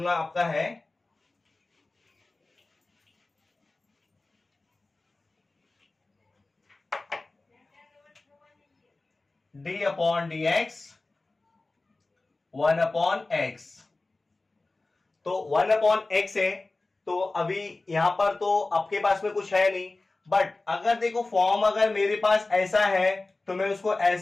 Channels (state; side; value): quieter; right; 3.2 dB